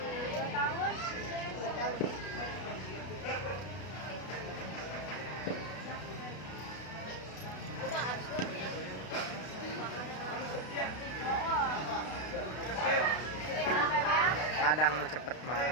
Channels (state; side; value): late; right; 32 ms